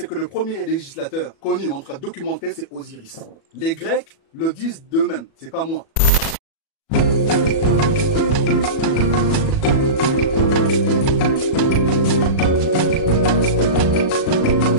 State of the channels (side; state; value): right; late; 37 ms